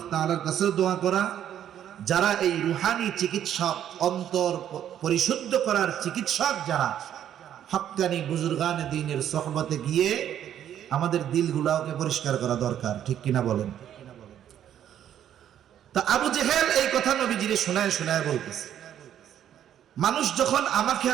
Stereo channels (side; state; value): left; quieter; 10.4 dB